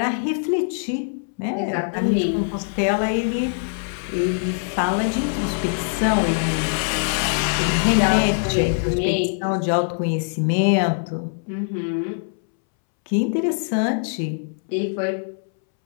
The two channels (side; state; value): right; silent; 64 dB below the other